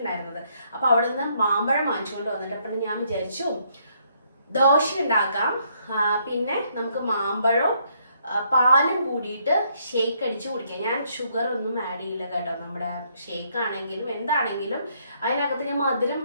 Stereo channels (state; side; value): inverted; both; correlation -0.70